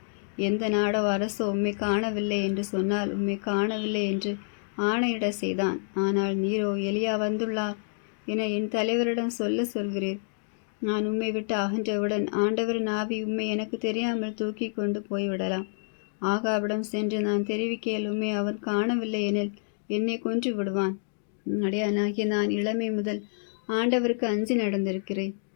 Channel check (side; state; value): right; silent; digital silence